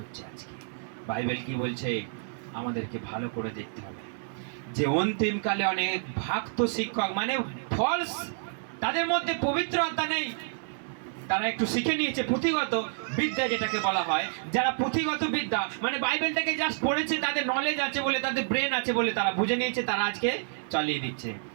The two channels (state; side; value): silent; left; digital silence